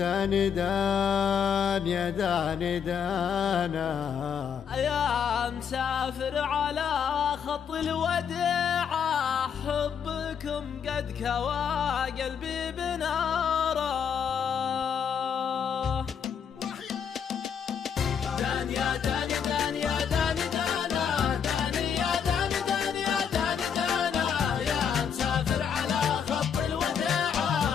دان يا دان دانه. يا مسافر على خط الوداع حبكم قد كوى قلبي بناره. دان يا دان دان يا دان دانه دان يا دان دان يا دان دانه. يا مسافر على خط الوداع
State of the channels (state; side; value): quieter; right; 7.4 dB